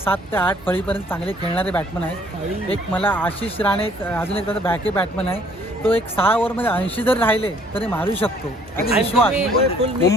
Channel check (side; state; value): both; normal; correlation 0.60